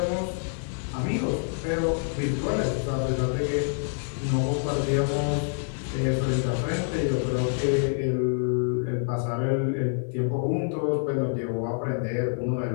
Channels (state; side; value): silent; right; digital silence